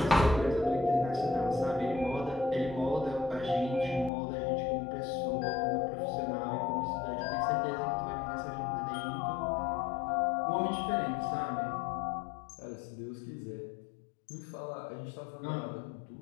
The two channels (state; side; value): drops out; right; at 4.1 s